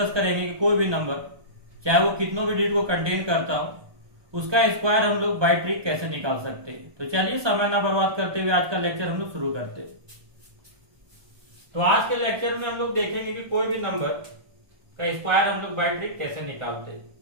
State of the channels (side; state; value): left; late; 1.2 ms